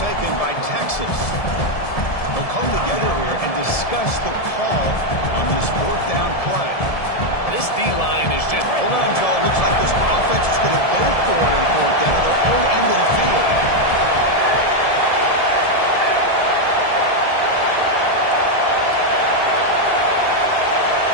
by Texas. They'll come together here and discuss the call on this 4th down play. This D-line is just... Hold on, Joe. Looks like this offense is going to go for it on 4th down at their own end of the field.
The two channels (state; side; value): late; right; 1.7 ms